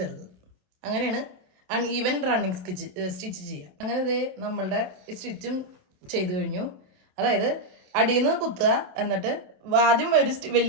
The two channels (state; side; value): late; left; 27 ms